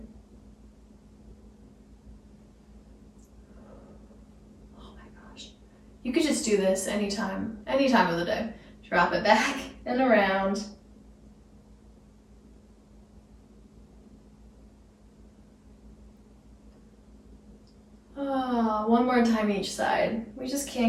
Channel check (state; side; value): identical; both; correlation 1.00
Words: You could just do this any time of the day. Drop it back and around. Oh, one more time each side. We just